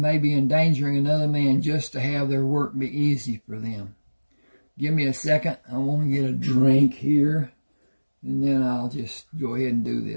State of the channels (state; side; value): inverted; both; correlation -1.00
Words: be endangering another man just to have their work be easy for them. Give me a second. I want to get a drink here, and then I'll just go ahead and do